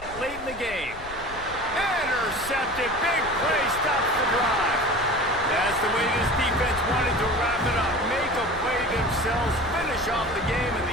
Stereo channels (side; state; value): left; noise; rumble, 15 dB below the sound